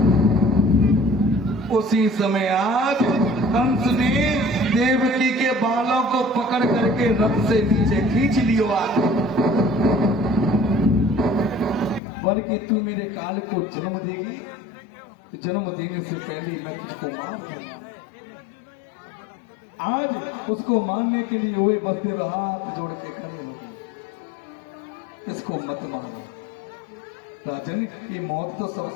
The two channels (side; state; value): right; drops out; at 12.0 s